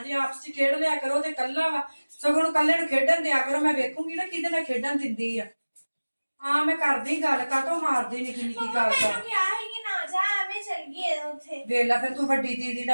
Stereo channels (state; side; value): inverted; both; correlation -1.00